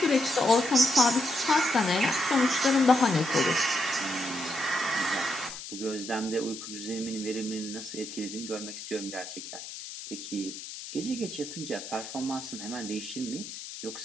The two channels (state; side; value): noise; left; hiss, 11 dB below the sound